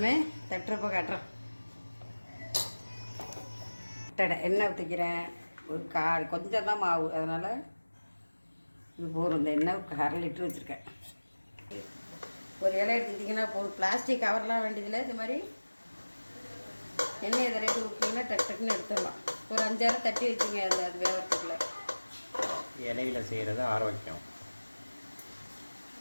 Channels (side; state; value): both; inverted; correlation -1.00